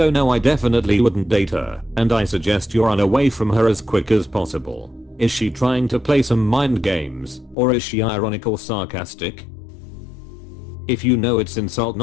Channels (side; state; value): right; drops out; at 7.6 s